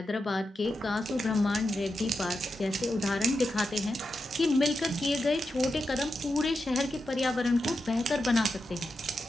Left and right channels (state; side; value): normal; both; correlation 0.88